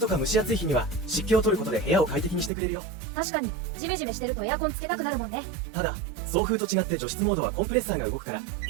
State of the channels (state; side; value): drops out; left; at 2.5 s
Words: とか蒸し暑い日には湿気を取ることで部屋を快適にしてくれるよ。確かに、ジメジメしてるとエアコンつけたくなるもんね。ただ、送風と違って除湿モードはコンプレッサーが動くから